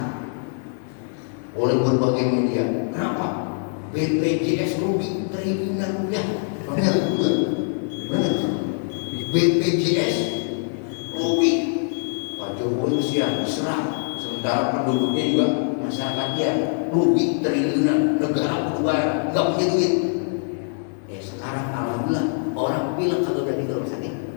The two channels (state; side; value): silent; right; 63 dB below the other